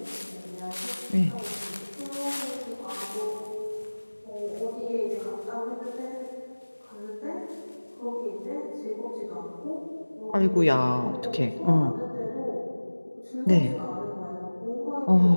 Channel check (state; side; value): inverted; both; correlation -1.00